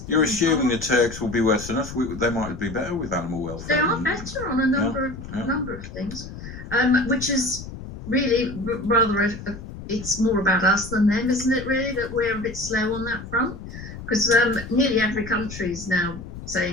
You're in assuming the parks. Turks will be worse than us. They might be better with animal They welfare. are better on a number of things, which is really rather it's more about us than them, isn't it? Really, that we're a bit slow on that front, because nearly every country is now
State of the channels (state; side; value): noise; left; rumble, 12 dB below the sound